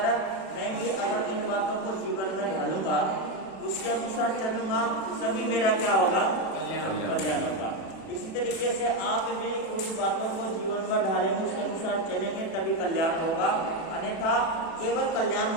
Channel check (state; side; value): late; right; 36 ms